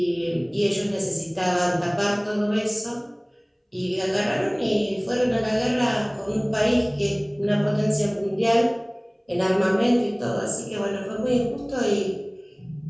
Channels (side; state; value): both; identical; correlation 1.00